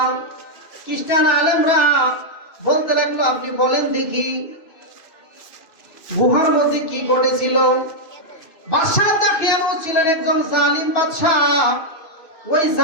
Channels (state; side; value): late; right; 2.6 ms